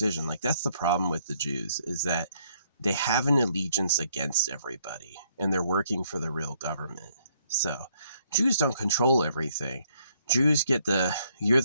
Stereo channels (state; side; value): inverted; both; correlation -0.69